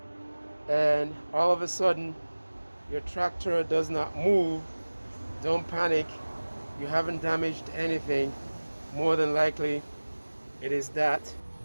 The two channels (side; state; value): both; inverted; correlation -1.00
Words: and all of a sudden your tractor does not move, don't panic. You haven't damaged anything. More than likely it is that